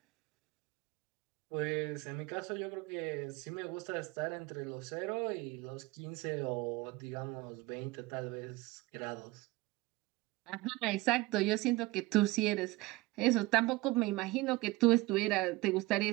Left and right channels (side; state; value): left; quieter; 20.4 dB